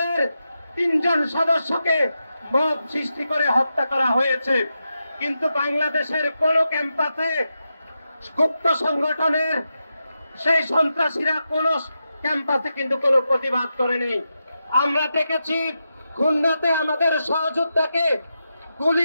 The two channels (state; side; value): inverted; both; correlation -0.88